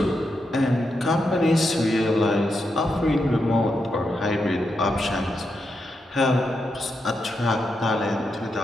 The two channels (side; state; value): both; normal; correlation 0.84